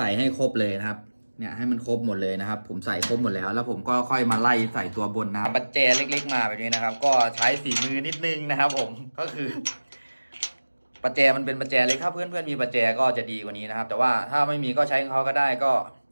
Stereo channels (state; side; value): inverted; both; correlation -1.00